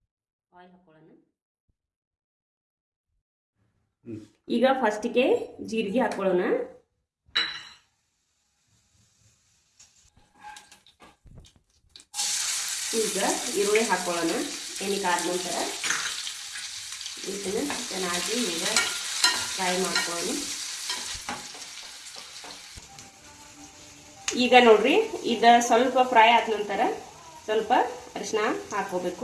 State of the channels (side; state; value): both; identical; correlation 1.00